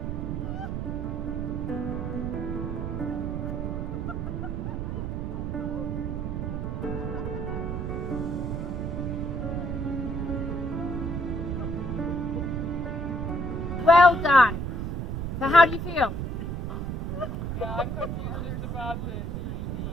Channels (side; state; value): right; noise; rumble, 2 dB below the sound